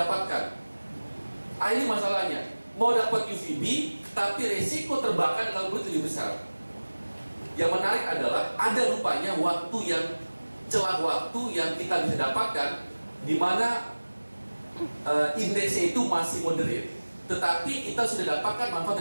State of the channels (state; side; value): inverted; both; correlation -1.00